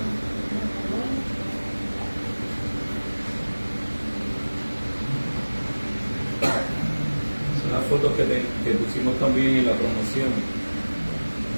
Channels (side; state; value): both; inverted; correlation -1.00